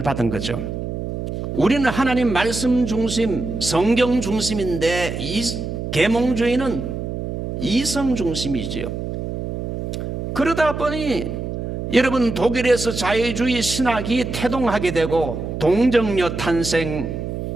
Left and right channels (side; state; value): right; noise; hum, 5 dB below the sound